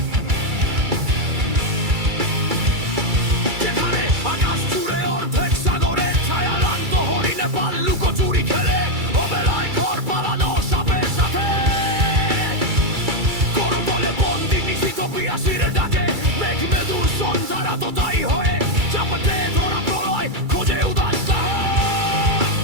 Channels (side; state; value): left; late; 2.3 ms